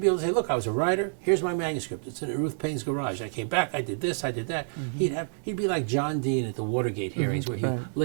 able to say, "Look, I was a writer. Here's my manuscript. It's in Ruth Payne's garage. I came back. I did this. I did that." He'd be like John Dean at the Watergate hearings, where he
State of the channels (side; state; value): left; silent; 59 dB below the other